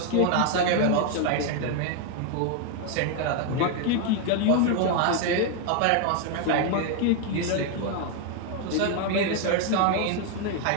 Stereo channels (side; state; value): both; different; correlation 0.01